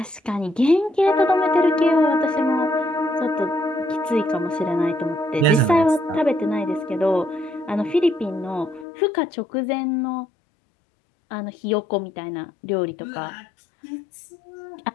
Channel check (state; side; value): drops out; right; at 8.8 s